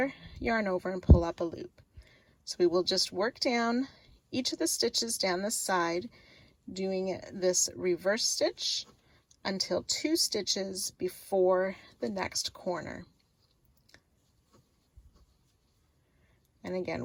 yarn over, and pull up a loop. So we will just work down each of the stitches down this side, doing this reverse stitch until 2 stitches before the next corner. And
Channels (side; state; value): both; identical; correlation 1.00